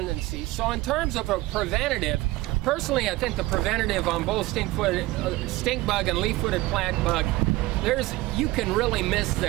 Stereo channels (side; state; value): left; quieter; 19.1 dB